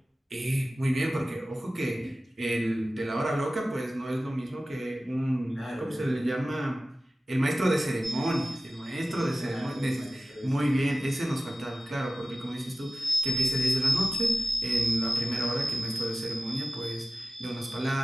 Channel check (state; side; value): normal; both; correlation 0.95